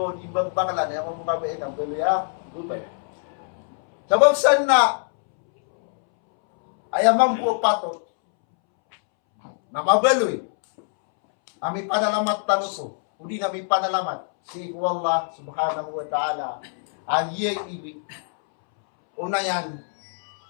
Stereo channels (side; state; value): right; silent; 63 dB below the other